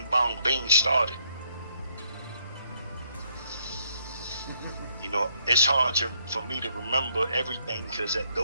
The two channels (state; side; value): inverted; both; correlation -0.72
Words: bong bing started. You know, it's hard for me to remember everything, because